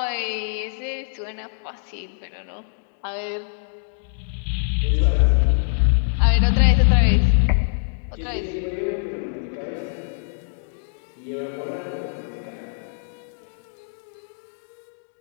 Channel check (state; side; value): silent; right; digital silence